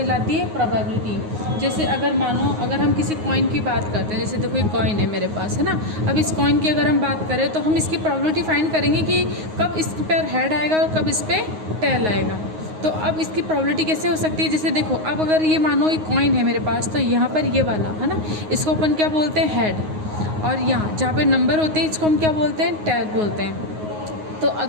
है? प्रोबेबिलिटी। जैसे अगर मानो अगर हम किसी कॉइन की बात करते हैं, जैसे देखो एक कॉइन है मेरे पास, है ना। अब इस कॉइन की अगर हम बात करें तो हम इसकी प्रोबेबिलिटी फाइंड करेंगे कि कब इस पर हेड आएगा और कब इस पर टेल आएगा। तो अब इसकी प्रोबेबिलिटी कैसे हो सकती है? जैसे देखो, अब अगर ये मानो ये कॉइन है मेरे पास, तो यहाँ पर ये वाला, है ना, इसको अपन क्या बोलते हैं? हेड। और यहाँ जहाँ पे नंबर होते हैं इसको हम क्या बोलते हैं? टेल बोलते हैं। तो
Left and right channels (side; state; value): left; late; 9.5 ms